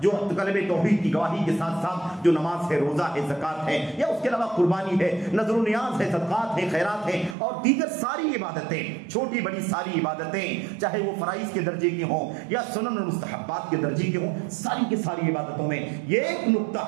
جو کلمہ توحید کی گواہی کے ساتھ ساتھ جو نماز ہے، روزہ ہے، زکات ہے، یا اس کے علاوہ قربانی ہے، نذر و نیاز ہے، صدقات ہے، خیرات ہے، اور دیگر ساری عبادتیں، چھوٹی بڑی ساری عبادتیں، چاہے وہ فرائض کے درجے کی ہوں یا سنن اور مستحبات کے درجے کی ہوں، ساری کی ساری عبادتوں میں یہ ایک نقطہ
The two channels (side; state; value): left; drops out; at 7.4 s